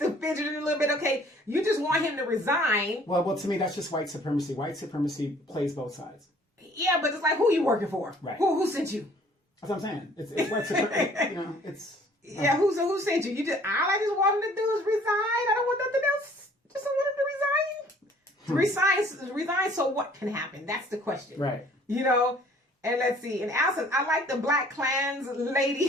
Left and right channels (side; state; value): both; normal; correlation 0.56